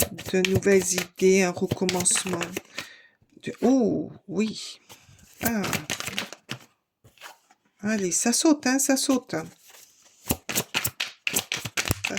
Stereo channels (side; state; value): both; identical; correlation 1.00